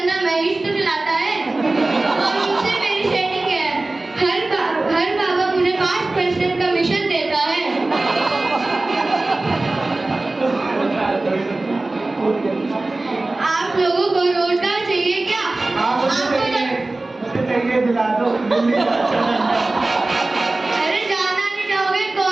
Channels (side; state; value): left; quieter; 3.0 dB